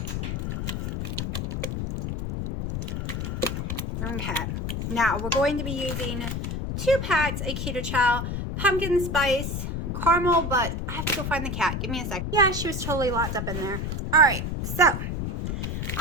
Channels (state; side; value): noise; left; rumble, 3 dB below the sound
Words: Okay, now we're going to be using 2 packs of Keto Chow pumpkin spice caramel, but I have to go find the cat. Give me a sec. Yeah, she was totally locked up in there. All right, so